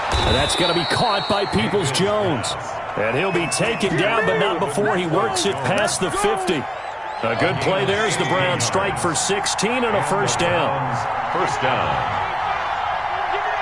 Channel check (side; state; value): both; identical; correlation 1.00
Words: And that's going to be caught by Peoples-Jones. And he'll be taken down, but not before he works it past the 50. A good play there as the Browns strike for 16 and a first down. First down.